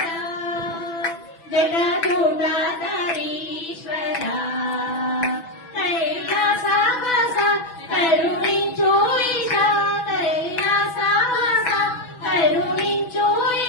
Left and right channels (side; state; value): right; late; 6.0 ms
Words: జటాజూటాధరీశ్వర కైలాసవాస కరుణించు ఈశా కైలాసవాస కరుణించు